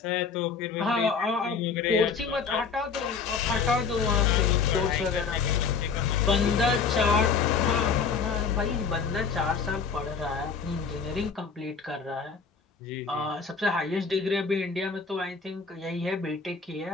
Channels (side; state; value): right; quieter; 5.5 dB